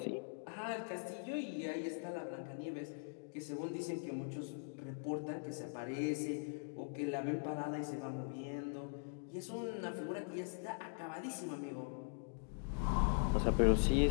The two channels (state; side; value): silent; right; digital silence